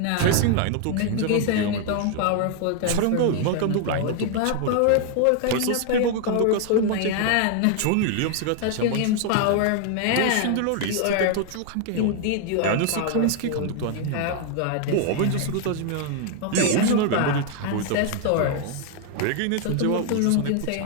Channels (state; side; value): different; both; correlation 0.00